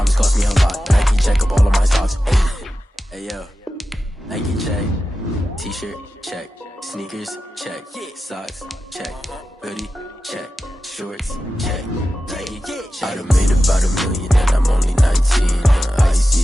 cost me a lot. Nike check up all of my stocks. Hey yo, Nike check. T-shirt check. Sneakers check. Socks check. Hoodie check. Shorts check. Nike check. I done made about $1 million and I'm only 19.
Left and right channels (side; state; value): both; normal; correlation 0.93